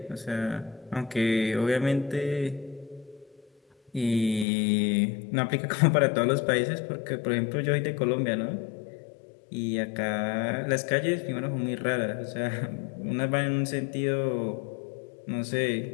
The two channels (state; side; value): drops out; right; at 4.5 s